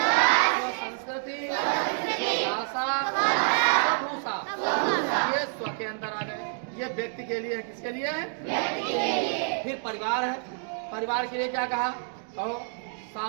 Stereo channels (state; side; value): silent; left; 59 dB below the other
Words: स्वसंस्कृति, भाषा, स्वभूषा। ये स्व के अंदर आ गए। ये व्यक्ति के लिए है। किसके लिए है? फिर परिवार है। परिवार के लिए क्या कहा? कहो।